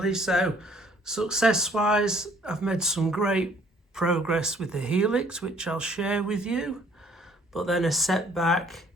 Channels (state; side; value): normal; both; correlation 0.60